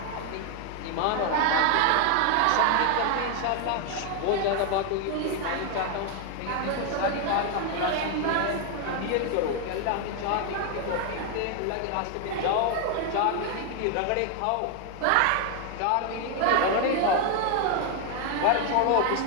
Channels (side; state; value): both; different; correlation 0.01